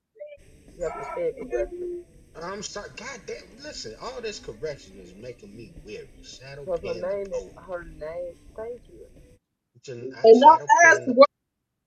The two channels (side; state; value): both; identical; correlation 1.00